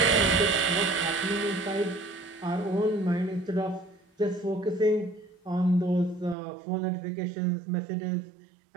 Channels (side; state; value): left; drops out; at 6.4 s